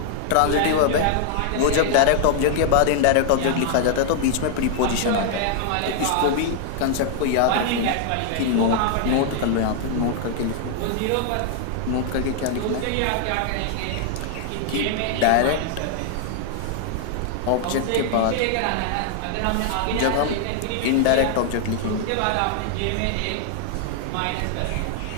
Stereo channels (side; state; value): both; different; correlation -0.01